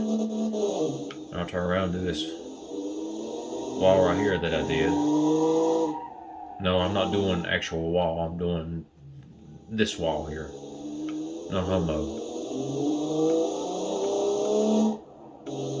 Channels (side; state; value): both; identical; correlation 1.00